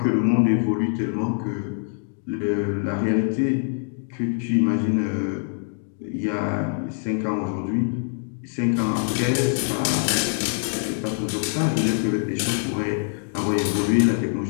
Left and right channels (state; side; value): silent; right; 61 dB below the other